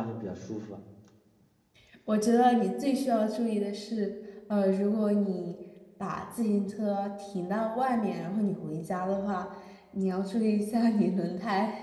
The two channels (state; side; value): identical; both; correlation 1.00